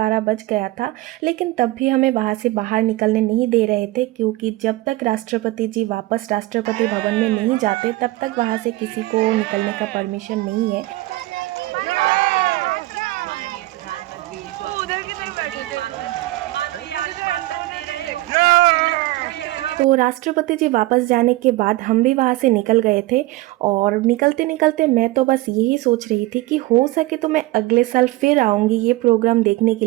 बज गया था, लेकिन तब भी हमें वहाँ से बाहर निकलने नहीं दे रहे थे, क्योंकि जब तक राष्ट्रपति जी वापस राष्ट्रपति भवन में नहीं जाते तब तक वहाँ से किसी को निकलने का परमिशन नहीं है। मानो ये आश्वासन दे रहे हो। तो राष्ट्रपति जी वापस जाने के बाद हम भी वहाँ से निकल गए थे और निकलते निकलते मैं तो बस यही सोच रही थी कि हो सके तो मैं अगले साल फिर आऊँगी ये प्रोग्राम देखने के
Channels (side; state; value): left; quieter; 19.1 dB